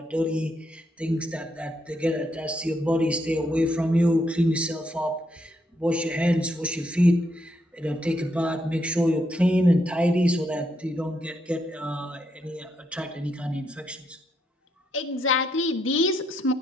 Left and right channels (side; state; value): both; normal; correlation 0.78